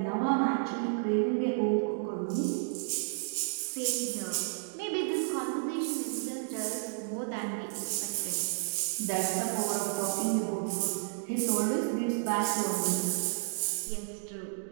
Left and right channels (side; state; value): left; silent; digital silence